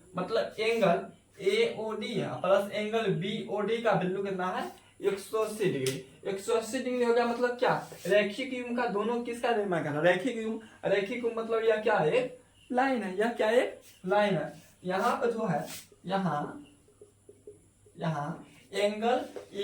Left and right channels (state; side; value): identical; both; correlation 1.00